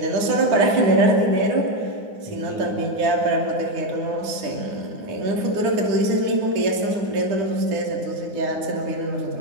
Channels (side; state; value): left; late; 9.6 ms